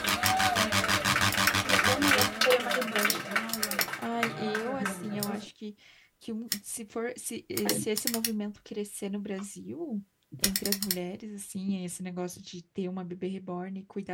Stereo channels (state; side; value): identical; both; correlation 1.00